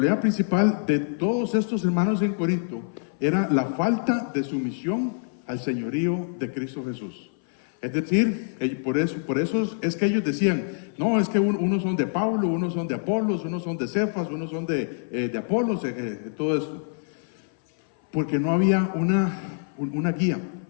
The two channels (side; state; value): right; silent; 58 dB below the other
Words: principal de todos estos hermanos en Corinto era la falta de sumisión al señorío de Cristo Jesús. Es decir, por eso es que ellos decían: no, es que unos son de Pablo, unos son de Apolos, unos son de Cefas, unos son de Apolos, todo esto. Porque no había una guía,